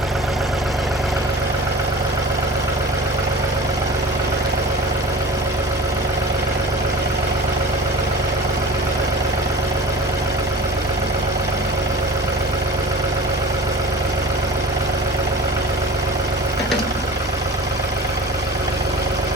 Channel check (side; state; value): both; normal; correlation 0.38